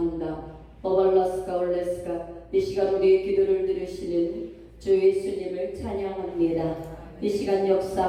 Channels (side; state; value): both; identical; correlation 1.00